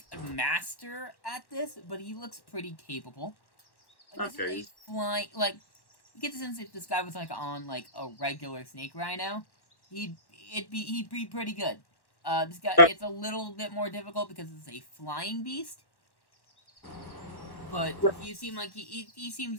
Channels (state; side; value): late; right; 1.1 ms